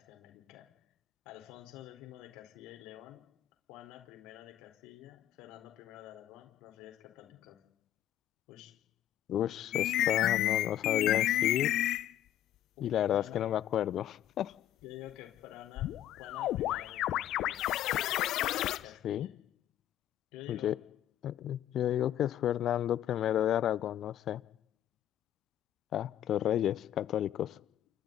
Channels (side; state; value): right; quieter; 12.0 dB